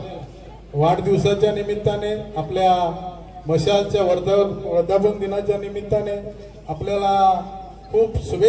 वाढदिवसाच्या निमित्ताने, आपल्या मशालच्या वर्धापन दिनाच्या निमित्ताने आपल्याला खूप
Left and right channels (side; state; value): both; identical; correlation 1.00